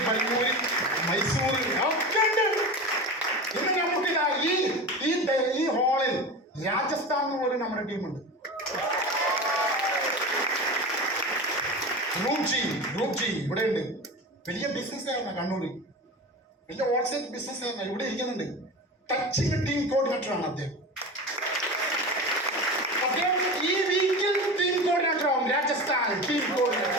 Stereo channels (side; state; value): both; normal; correlation 0.28